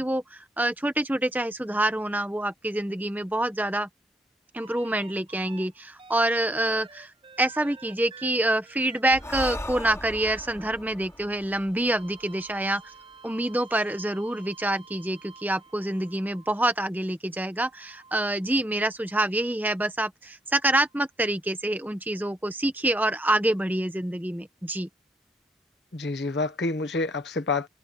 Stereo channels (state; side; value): normal; both; correlation 0.72